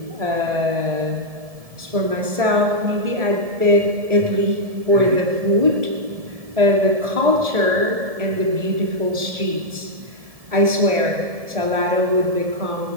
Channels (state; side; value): late; left; 1.7 ms